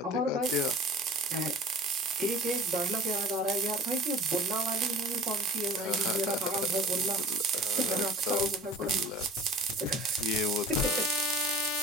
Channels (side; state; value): both; normal; correlation 0.44